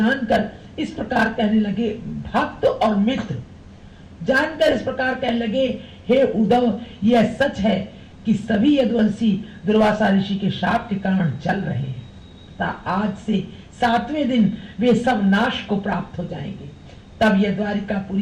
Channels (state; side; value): identical; both; correlation 1.00